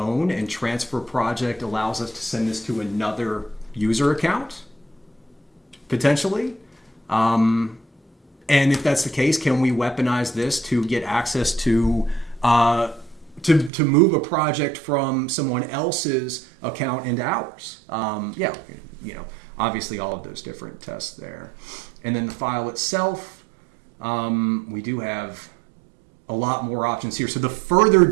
and transfer project allows us to send this to another user account, potentially. And if that's the case, can we weaponize this to get access to move a project from someone else's account into ours? Yeah, obviously all of those different tests there. And then the file itself, we do have a lot more options here. So the further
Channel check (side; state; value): left; drops out; at 13.7 s